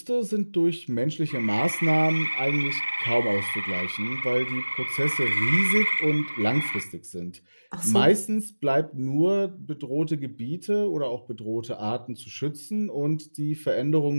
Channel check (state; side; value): inverted; both; correlation -1.00